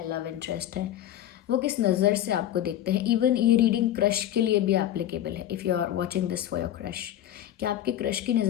लव इंटरेस्ट है, वो किस नज़र से आपको देखते हैं। इवन ये रीडिंग क्रश के लिए भी एप्लीकेबल है। If you are watching this for your crush, कि आपके क्रश की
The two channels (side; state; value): right; quieter; 12.1 dB